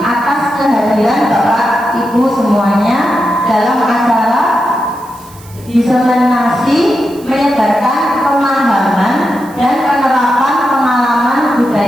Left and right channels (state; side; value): noise; right; hiss, 23 dB below the sound